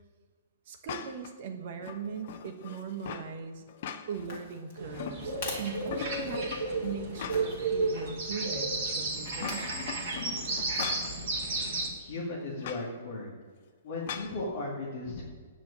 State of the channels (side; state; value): both; inverted; correlation -0.43